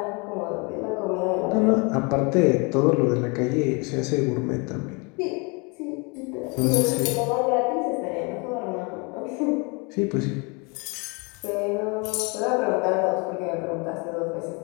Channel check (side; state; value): right; quieter; 30.9 dB